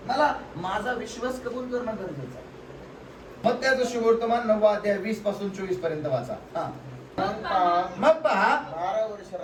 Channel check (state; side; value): identical; both; correlation 1.00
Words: मला माझा विश्वास कबूल करणं गरजेचं आहे. मग त्याचं सुवर्तमान 9 अध्याय 20 पासून 24 पर्यंत वाचा. मग पहा, 12 वर्ष